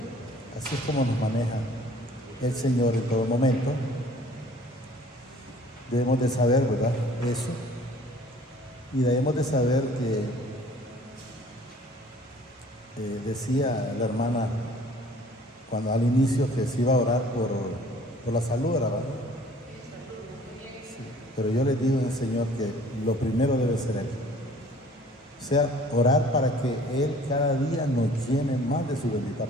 Así es como nos maneja el Señor en todo momento. Debemos de saber, ¿verdad?, eso. Y debemos de saber que decía la hermana cuando al inicio que se iba a orar por la salud, ¿verdad? Sí. Pero yo les digo al Señor que lo primero debe ser Él. O sea, orar para que Él cada día nos llene más de su bendita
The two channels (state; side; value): normal; both; correlation 0.52